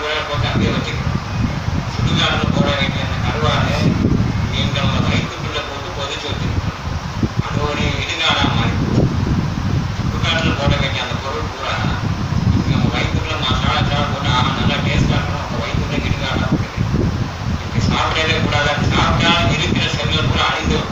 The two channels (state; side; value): identical; both; correlation 1.00